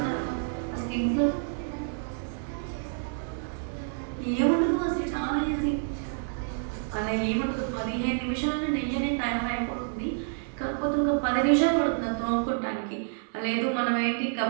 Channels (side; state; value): left; silent; 56 dB below the other